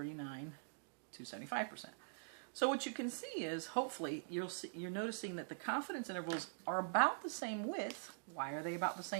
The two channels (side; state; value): left; silent; digital silence